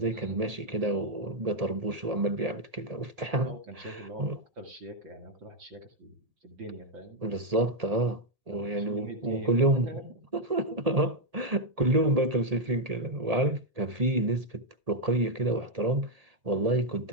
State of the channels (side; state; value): left; late; 1.8 ms